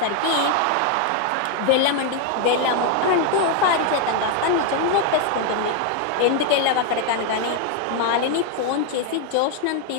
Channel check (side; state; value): both; different; correlation 0.01